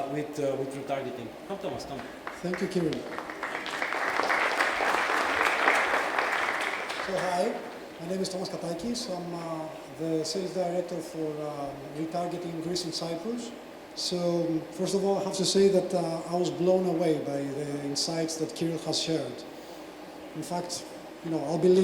with retargeting. Come, Thomas, come. Thank you, Kiril. So hi, my name is Thomas Katakis. I'm the sales director for retargeting in Greece and Cyprus. So first of all, I have to say that I was blown away by the insights that Kiril has shared. In fact, I'll be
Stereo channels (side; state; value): both; identical; correlation 1.00